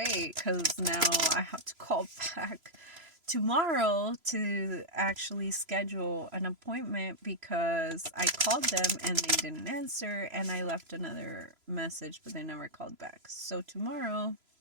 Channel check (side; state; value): left; late; 3.0 ms